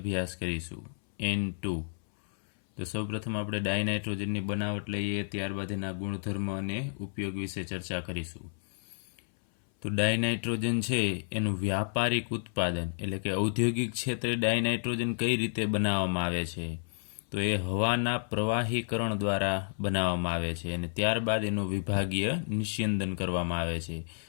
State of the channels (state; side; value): silent; right; 57 dB below the other